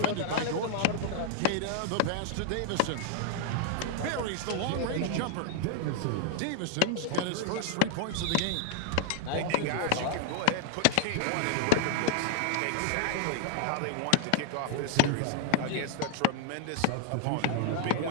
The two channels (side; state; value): both; different; correlation 0.00